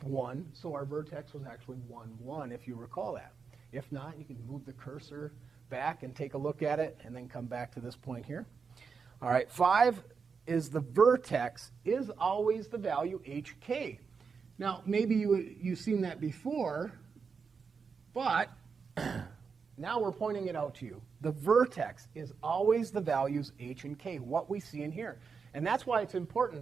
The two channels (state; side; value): quieter; left; 5.6 dB